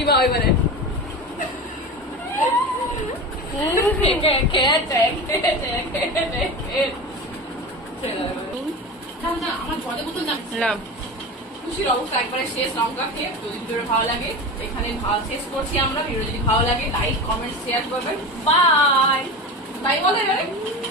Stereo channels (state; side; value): normal; both; correlation 0.27